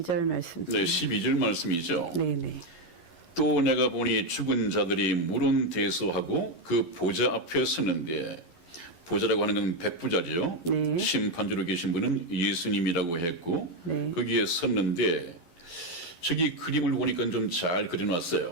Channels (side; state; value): right; late; 11 ms